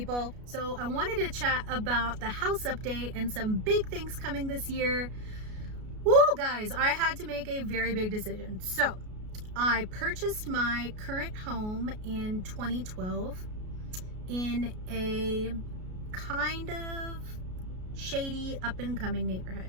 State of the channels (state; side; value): late; left; 33 ms